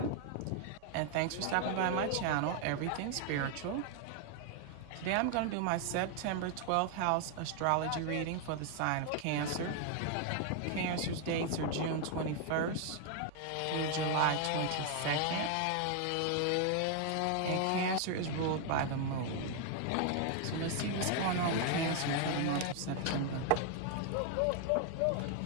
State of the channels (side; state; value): both; different; correlation 0.00